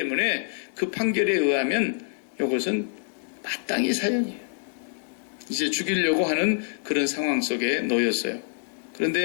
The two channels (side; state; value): right; silent; digital silence